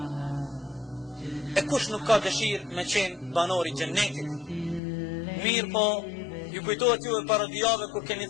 E kush nuk ka dëshirë me qenë banori i xhennetit? Mirë po, ju kujtohet juve para 2 javë kur keni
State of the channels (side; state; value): right; drops out; at 4.8 s